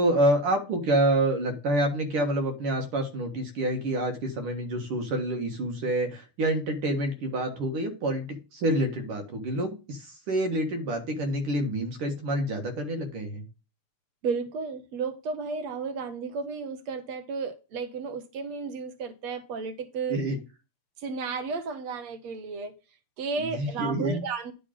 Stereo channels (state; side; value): late; left; 6.8 ms